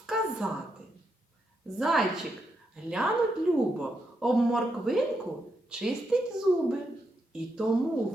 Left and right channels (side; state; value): both; normal; correlation 0.82